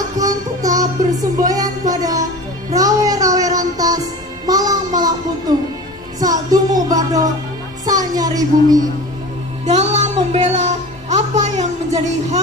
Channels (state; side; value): normal; both; correlation 0.35